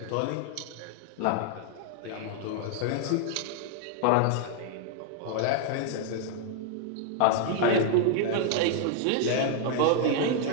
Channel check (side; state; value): both; different; correlation 0.00